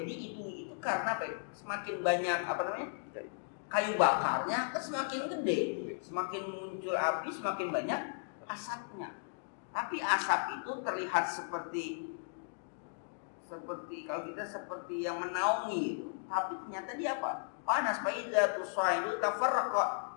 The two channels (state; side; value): silent; right; digital silence